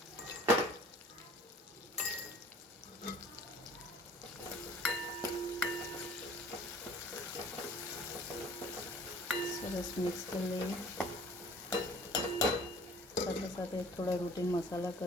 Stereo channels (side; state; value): both; normal; correlation 0.50